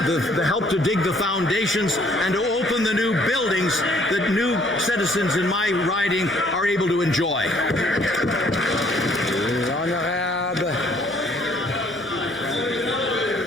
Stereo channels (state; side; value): noise; left; hum, 26 dB below the sound